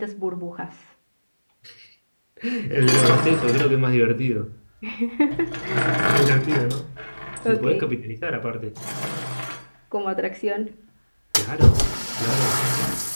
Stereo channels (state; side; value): inverted; both; correlation -1.00